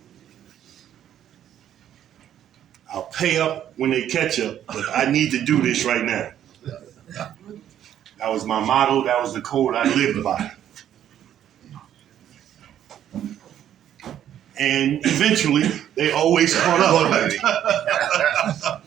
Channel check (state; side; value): quieter; left; 10.6 dB